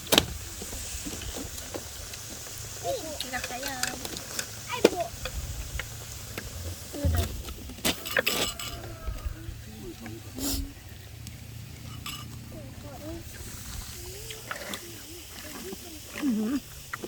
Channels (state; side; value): identical; both; correlation 1.00